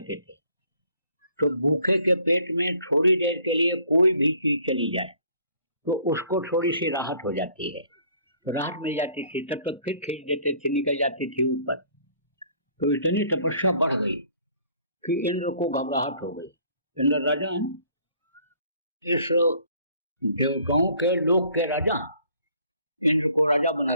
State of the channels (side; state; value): both; inverted; correlation -0.58